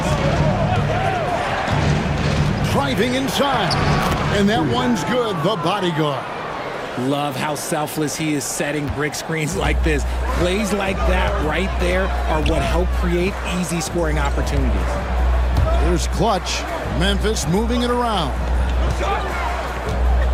Driving inside. And that one's good, the bodyguard. Love how selfless he is setting brick screens like this. Plays like that right there are what help create easy scoring opportunities. Here's Clutch. Memphis moving it around.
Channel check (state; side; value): identical; both; correlation 1.00